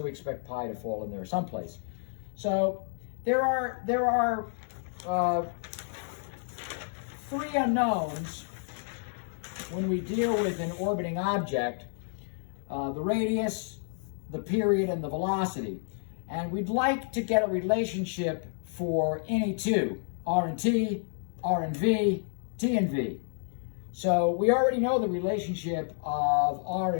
we expect pi to fall in there someplace. So there are 3 unknowns when we deal with an orbiting object: the radius, the period, and the velocity. And we'd like to get a relationship for any two, r and t, r and v, t and v. So we already know the relationship of r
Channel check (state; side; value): silent; right; 58 dB below the other